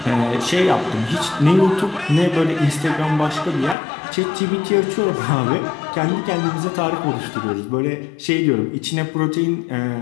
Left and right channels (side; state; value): right; drops out; at 3.8 s